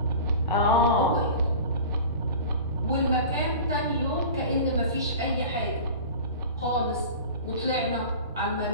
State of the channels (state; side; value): inverted; both; correlation -0.37